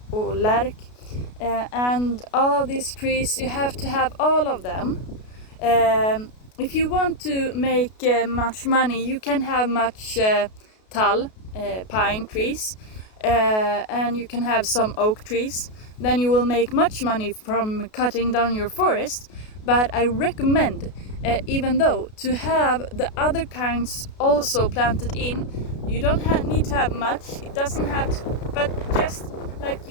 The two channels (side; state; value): right; late; 33 ms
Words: or lärk. And all of these trees, you have to have all of them. If you want to make much money, you can have much tall, pine trees, and you can have some oak trees. Then you will make much money from cutting down your forest. But I recommend, even though, to have the other kinds also planted in. You don't need to have much. It doesn't have to, but just like